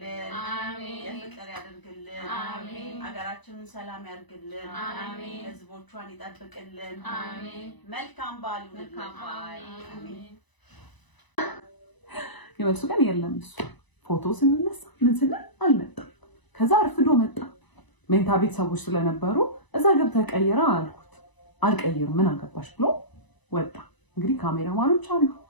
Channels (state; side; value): late; right; 1.0 ms